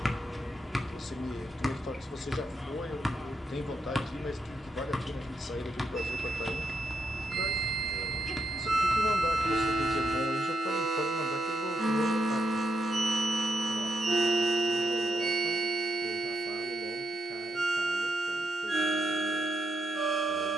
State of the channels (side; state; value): both; normal; correlation 0.82